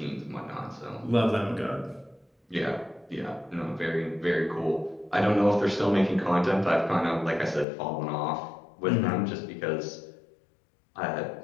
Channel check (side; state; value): right; drops out; at 7.7 s